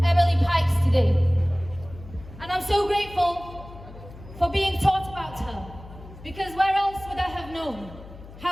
Emily Pikes today. And I'm so grateful for being taught about her, because where else would I have known?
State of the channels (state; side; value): noise; left; hum, 17 dB below the sound